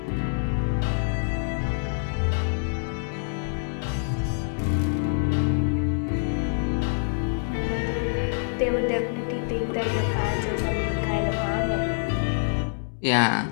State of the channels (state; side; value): silent; right; digital silence